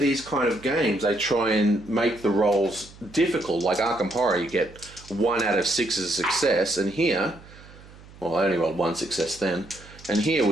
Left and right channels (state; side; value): noise; right; hum, 21 dB below the sound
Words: kind of games, they try and make the rolls difficult. Like Arkham Horror, you get 1 out of 6 as a success, and here, well, I only rolled 1 success then, and here